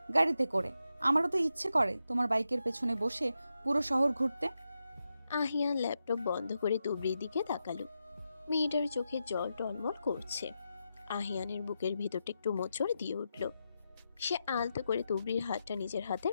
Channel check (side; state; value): both; inverted; correlation -0.87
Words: গাড়িতে করে। আমারও তো ইচ্ছে করে তোমার বাইকের পেছনে বসে পুরো শহর ঘুরতে। আহিয়ান ল্যাপটপ বন্ধ করে তুবড়ির দিকে তাকালো। মেয়েটার চোখে জল টলমল করছে। আহিয়ানের বুকের ভেতরটা একটু মোচড় দিয়ে উঠল। সে আলতো করে তুবড়ির হাতটা নিজের হাতের